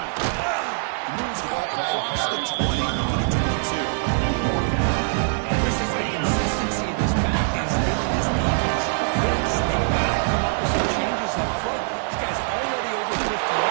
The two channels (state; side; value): silent; left; digital silence